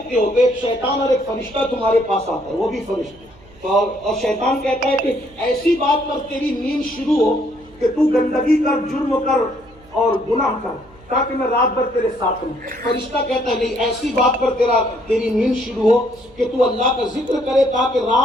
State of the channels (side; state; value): right; noise; hum, 26 dB below the sound